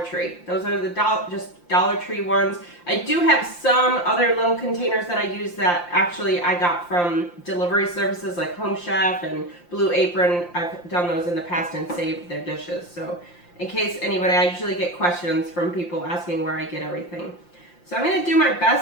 Those are the just Dollar Tree ones. I do have some other little containers that I use that actually I got from delivery services like Home Chef and Blue Apron. I've done those in the past and saved their dishes. So in case anybody, I usually get questions from people asking where I get everything. So I'm going to do my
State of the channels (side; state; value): right; late; 5.7 ms